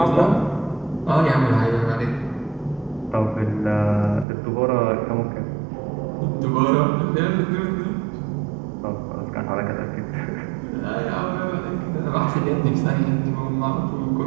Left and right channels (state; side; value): drops out; left; at 4.2 s